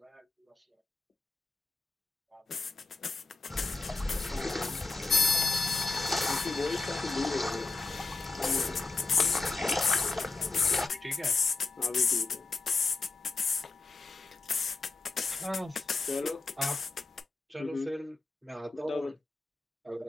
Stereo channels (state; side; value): quieter; right; 3.8 dB